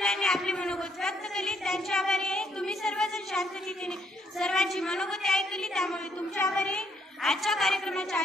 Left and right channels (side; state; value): both; normal; correlation 0.71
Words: आपले मनोगत व्यक्त केले, त्यांचे आभारी आहे. तुम्ही सर्वजण शांततेने सर्वांची मनोगती ऐकली, त्यामुळे तुमचे आभारी आहे. आजच्या कार्यक्रमाच्या